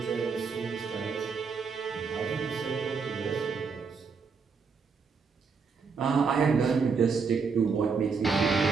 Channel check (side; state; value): left; quieter; 5.3 dB